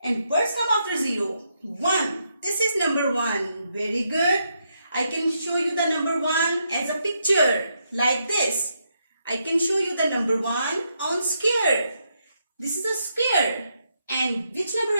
And words come after 0. 1. This is number 1. Very good. I can show you the number 1 as a picture like this. I can show you the number 1 on square. This is a square. And which number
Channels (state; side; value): inverted; both; correlation -0.80